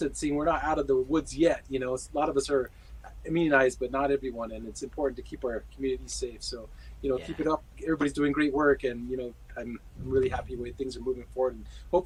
We're not out of the woods yet. A lot of us are immunized, but not everyone, and it's important to keep our community safe. So, keep it up. Everybody's doing great work, and I'm really happy the way things are moving forward, and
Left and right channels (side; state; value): both; identical; correlation 1.00